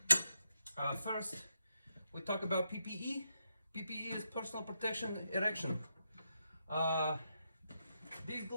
First, we talk about PPE. PPE is personal protection erection. These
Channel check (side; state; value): both; inverted; correlation -0.83